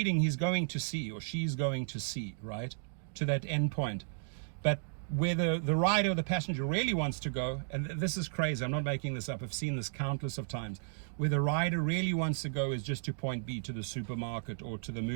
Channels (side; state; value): left; silent; digital silence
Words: he's going to C or she's going to C, right? To that end point. But where the rider or the passenger really wants to go, and this is crazy, I'm not making this up, I've seen this countless of times, where the rider really wants to go is just to point B, to the supermarket or to the